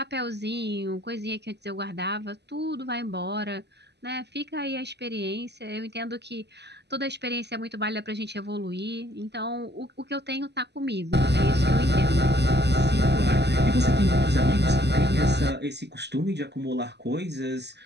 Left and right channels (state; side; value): late; left; 0.50 ms